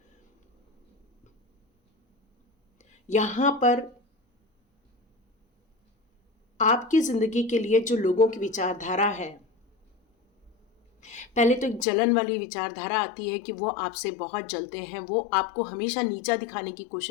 यहाँ पर आपकी ज़िंदगी के लिए जो लोगों की विचारधारा है, पहले तो एक जलन वाली विचारधारा आती है कि वो आपसे बहुत जलते हैं, वो आपको हमेशा नीचा दिखाने की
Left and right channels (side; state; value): right; drops out; at 11.9 s